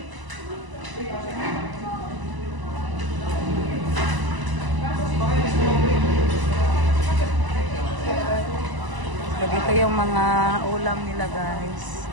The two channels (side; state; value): left; late; 1.0 ms